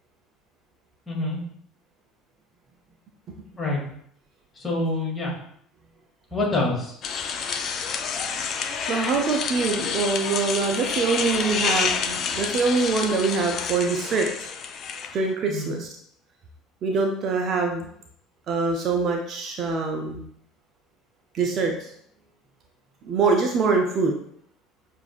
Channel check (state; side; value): normal; both; correlation 0.44